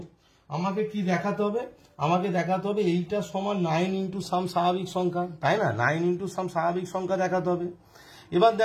আমাকে কি দেখাতে হবে, আমাকে দেখাতে হবে এইটা সমান 9 ইন্টু সাম স্বাভাবিক সংখ্যা, তাই না, 9 ইন্টু সাম স্বাভাবিক সংখ্যা দেখাতে হবে। এবার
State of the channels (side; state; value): both; identical; correlation 1.00